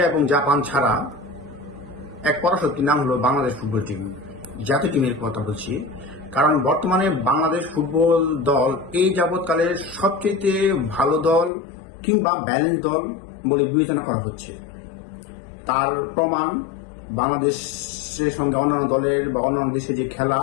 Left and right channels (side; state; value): right; drops out; at 11.5 s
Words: এবং জাপান ছাড়া এক পরাশক্তির নাম হলো বাংলাদেশ ফুটবল টিম। জাতীয় টিমের কথা বলছি, কারণ বর্তমানে বাংলাদেশ ফুটবল দল এই যাবৎকালের সবচেয়ে ভালো দল কিংবা ব্যালেন্স দল বলে বিবেচনা করা হচ্ছে। তার প্রমাণ বাংলাদেশের সঙ্গে অন্যান্য দলের বা অন্যান্য দেশে যে খেলা